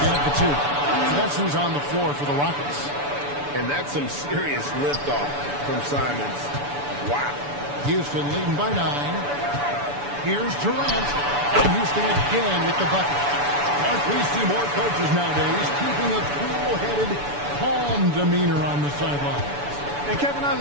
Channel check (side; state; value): left; late; 6.9 ms